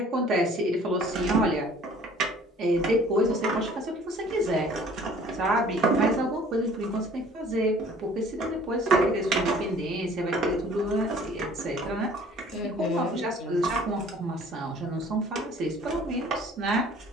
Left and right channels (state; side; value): normal; both; correlation 0.52